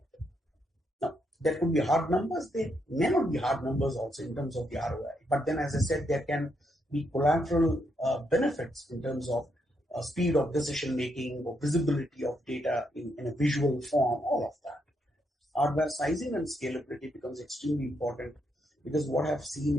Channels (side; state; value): both; normal; correlation 0.78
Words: Now, there could be hard numbers. There may not be hard numbers also in terms of the ROI. But then, as I said, there can be collateral benefits in terms of speed of decision making or visibility of data in a visual form, all of that. Hardware sizing and scalability becomes extremely important, because what I've seen